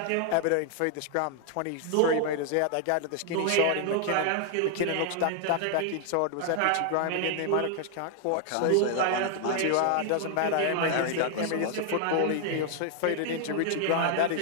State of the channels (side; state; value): both; different; correlation 0.00